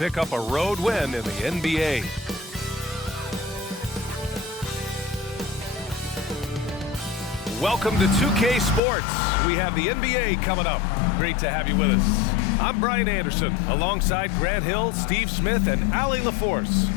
up a road win in the NBA. Welcome to 2K Sports. We have the NBA coming up. Great to have you with us. I'm Brian Anderson, alongside Grant Hill, Steve Smith, and Allie LaForce.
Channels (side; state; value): right; drops out; at 8.8 s